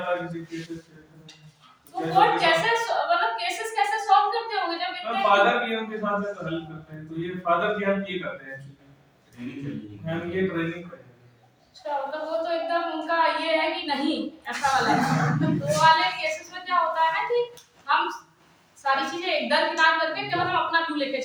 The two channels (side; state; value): both; identical; correlation 1.00